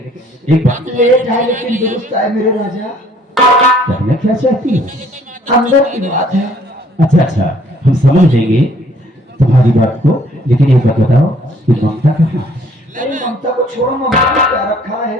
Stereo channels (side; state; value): both; normal; correlation 0.60